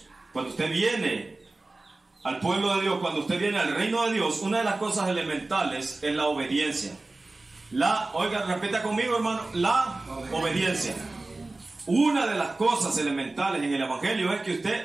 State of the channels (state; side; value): quieter; left; 3.1 dB